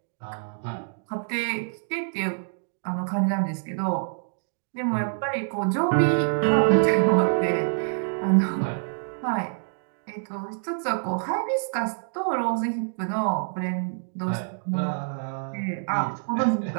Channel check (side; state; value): left; silent; digital silence